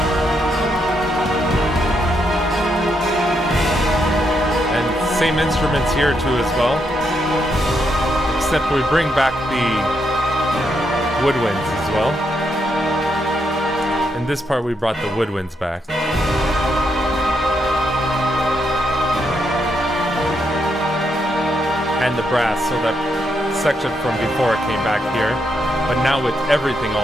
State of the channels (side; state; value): both; normal; correlation 0.79